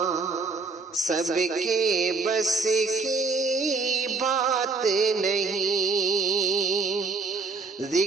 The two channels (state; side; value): quieter; left; 4.0 dB